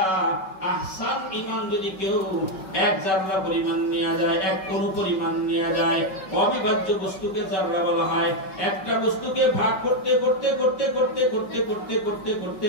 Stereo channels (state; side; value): late; right; 5.3 ms